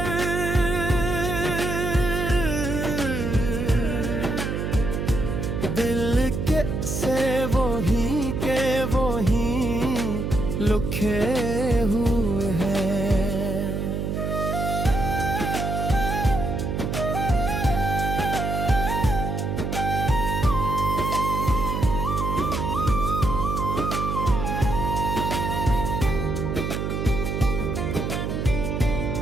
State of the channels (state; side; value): noise; right; hum, 2 dB below the sound